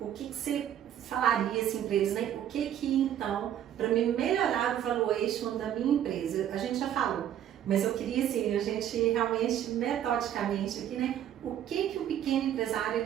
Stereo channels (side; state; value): left; quieter; 10.6 dB